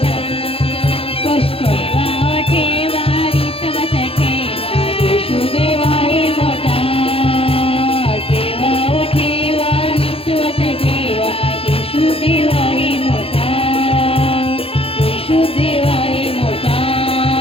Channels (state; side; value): late; right; 0.27 ms